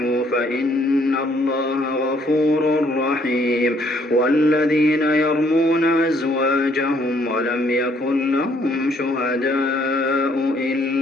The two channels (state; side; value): normal; both; correlation 0.66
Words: فإن الله غفور رحيم والذين يرمون أزواجهم ولم يكن لهم شهداء